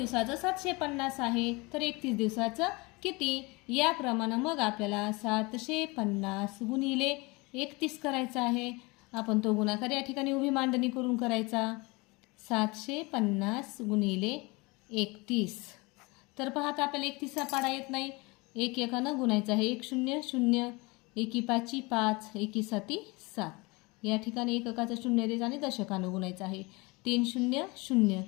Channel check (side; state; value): right; quieter; 25.5 dB